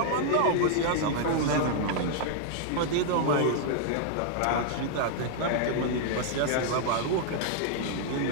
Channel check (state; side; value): different; both; correlation -0.01